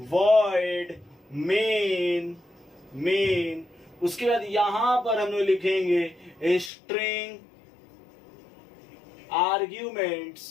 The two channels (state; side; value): drops out; right; at 6.7 s